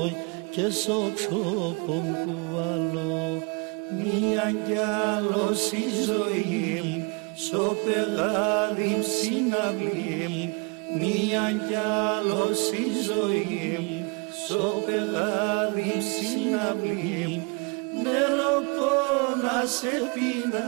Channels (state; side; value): quieter; left; 32.2 dB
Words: και στο ξόπον κουβαλώ. Μία κι άλλος η ζωή, στο πεγάδι συναυλή. Μία κι άλλος η ζωή, στο πεγάδι συναυλή. Νερό πόνα σε